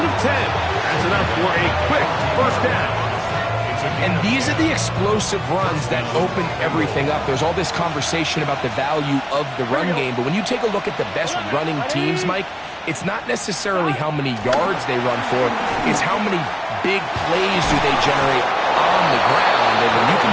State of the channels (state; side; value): identical; both; correlation 1.00